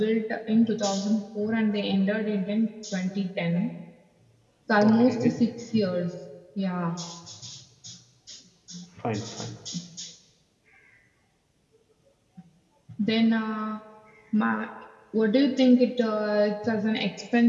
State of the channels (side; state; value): both; identical; correlation 1.00